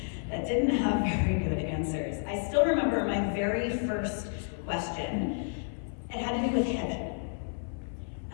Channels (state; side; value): silent; right; 57 dB below the other